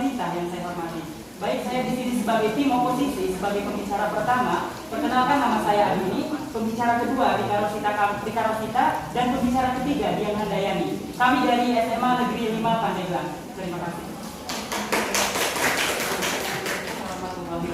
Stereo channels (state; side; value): identical; both; correlation 1.00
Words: yang saya hormati. Baik, saya di sini sebagai tim oposisi, sebagai pembicara pertama. Perkenalkan, nama saya Adini, pembicara kedua Rika Rosita, dan pembicara ketiga Dian Handayani. Kami dari SMA Negeri 5 Pandeglang. Terima kasih. Waalaikumsalam